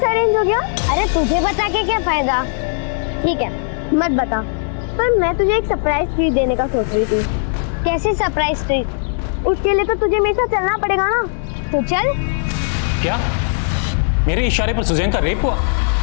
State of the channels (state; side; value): silent; right; digital silence